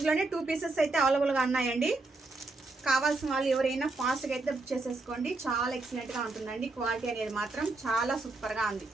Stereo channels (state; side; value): quieter; left; 3.3 dB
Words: 2 పీసెస్ అయితే అవైలబుల్గా ఉన్నాయండి. కావాల్సిన వాళ్ళు ఎవరైనా ఫాస్ట్గా అయితే బుక్ చేసేసుకోండి. చాలా ఎక్సలెంట్గా ఉంటుందండి. క్వాలిటీ అనేది మాత్రం చాలా సూపర్గా ఉంది.